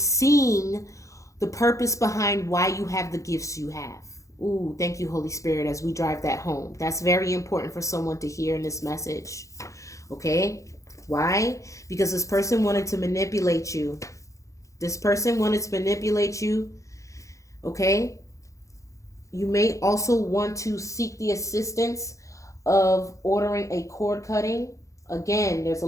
the purpose behind why you have the gifts you have. Ooh, thank you, Holy Spirit, as we drive that home. That's very important for someone to hear in this message. Okay? Why? Because this person wanted to manipulate you. This person wanted to manipulate you. Okay? You may also want to seek the assistance of ordering a cord cutting. Again, there's a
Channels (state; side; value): late; right; 0.15 ms